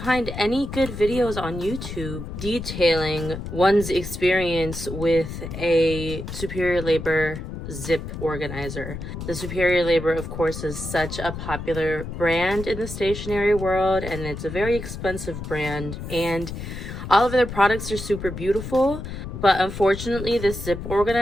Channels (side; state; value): left; noise; rumble, 8 dB below the sound